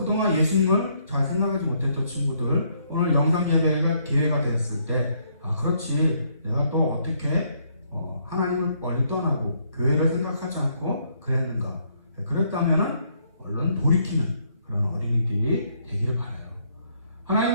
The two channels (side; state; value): both; inverted; correlation -0.71